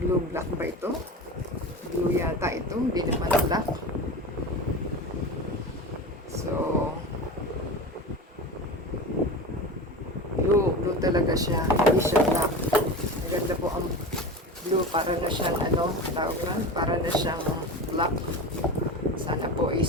Blue black ba ito? Blue yata ito. Hindi naman black. So, blue talaga siya. Hindi siya black. Maganda po ang blue. Para na siyang tawag na? Para na siyang black. Sana po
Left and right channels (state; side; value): normal; both; correlation 0.28